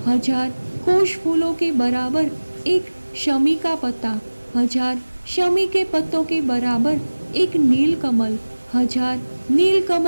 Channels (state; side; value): inverted; both; correlation -1.00